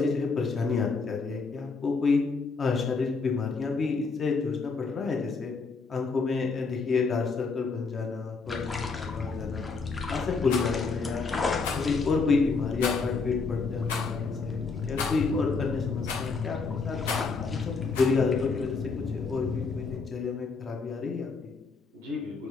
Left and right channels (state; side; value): quieter; right; 4.5 dB